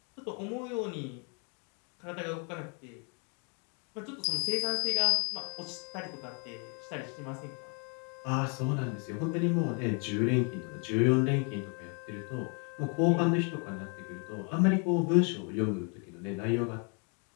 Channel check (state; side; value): quieter; right; 36.8 dB